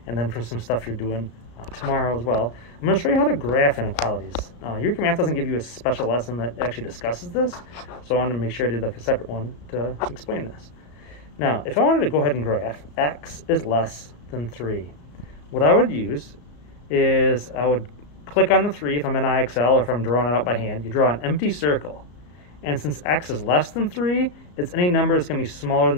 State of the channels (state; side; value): late; right; 34 ms